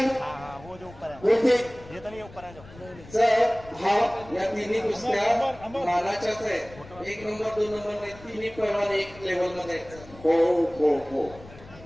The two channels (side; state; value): left; noise; rumble, 19 dB below the sound